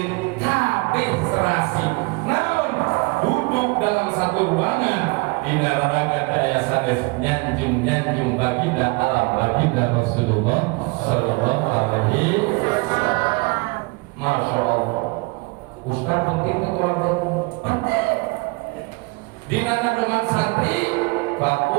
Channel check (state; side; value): quieter; left; 27.9 dB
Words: kabeh serasi. Duduk dalam satu ruangan di neraka daya sanes nyanjung baginda alam baginda Rasulullah Sallallahu Alaihi Wasallam. Masya Allah, Ustaz penting keluarga penting. Di mana dengan santri